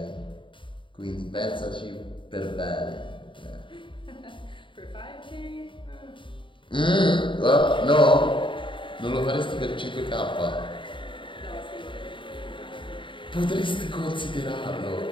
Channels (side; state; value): right; late; 0.24 ms